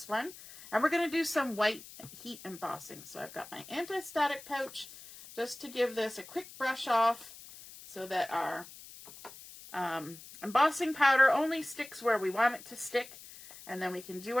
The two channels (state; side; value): noise; left; hiss, 17 dB below the sound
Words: one. And we're going to do some white heat embossing. So I've got my anti-static pouch just to give this a quick brush off so that our embossing powder only sticks where we want it to stick. And then we can do